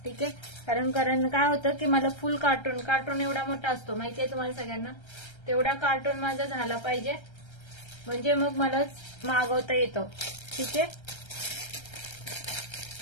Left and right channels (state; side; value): late; right; 1.3 ms